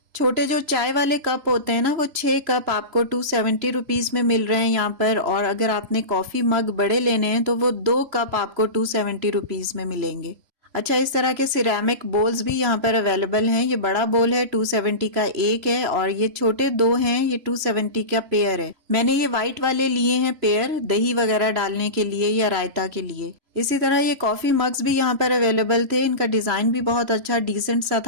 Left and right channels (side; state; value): left; late; 3.0 ms